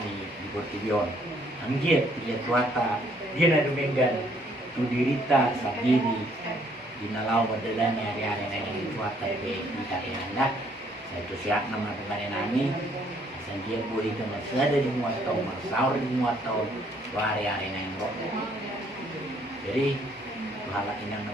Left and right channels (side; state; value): both; normal; correlation 0.65